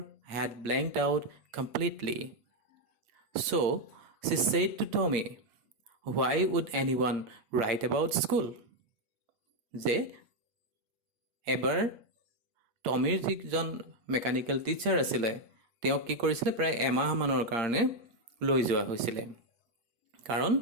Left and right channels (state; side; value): late; left; 8.7 ms